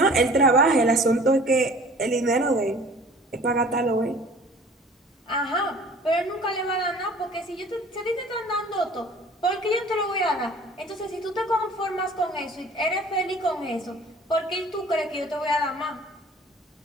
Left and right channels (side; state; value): both; normal; correlation 0.48